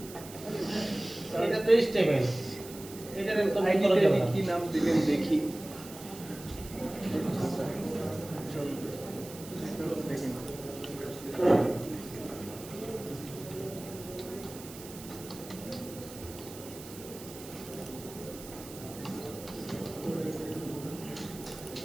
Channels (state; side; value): noise; right; hiss, 15 dB below the sound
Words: এটা তো স্টেবল, এটার একদম করা যাবে না। কি নাম দিলেন দেখি। চলো দেখি।